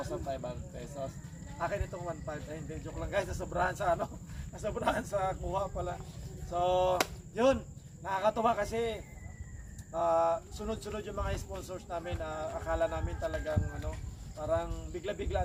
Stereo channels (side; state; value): both; identical; correlation 1.00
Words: pesos. Akin itong 1,500. Ay, hindi, joke lang guys, nasobrahan sa nasobrahan sa kuha pala. So yun, nakakatuwa kasi sunod-sunod yung mga sponsors namin. Akala namin talagang parang bigla-bigla